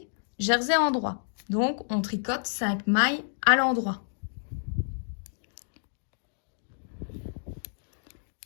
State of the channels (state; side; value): silent; right; digital silence